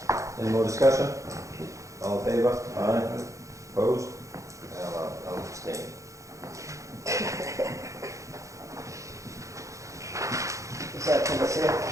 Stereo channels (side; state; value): left; late; 0.15 ms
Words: Any more discussion? All in favor? Aye. Opposed? I'll abstain. Is that for the sale?